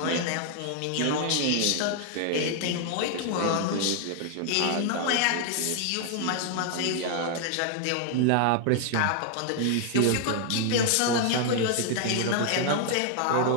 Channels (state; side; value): different; both; correlation 0.00